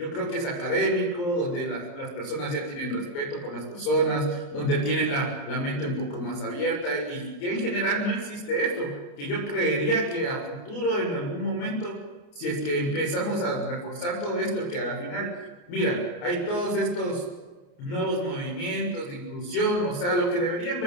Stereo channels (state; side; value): late; right; 29 ms